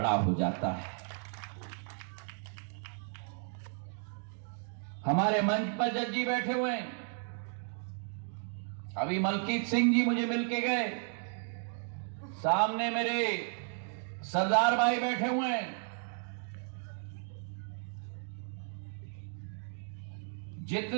हो जाता है। हमारे मंच पर जज जी बैठे हुए हैं। अभी मलकीत सिंह जी मुझे मिलके गए। सामने मेरे सरदार भाई बैठे हुए हैं।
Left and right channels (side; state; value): left; silent; 55 dB below the other